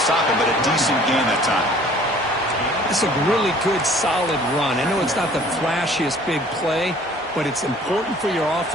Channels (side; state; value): both; normal; correlation 0.53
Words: it, but a decent gain that time. It's a really good, solid run. I know it's not the flashiest big play, but it's important for your